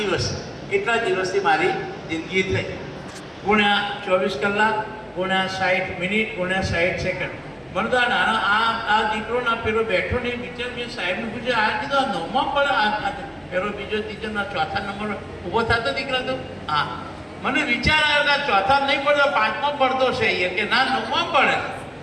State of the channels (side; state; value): both; identical; correlation 1.00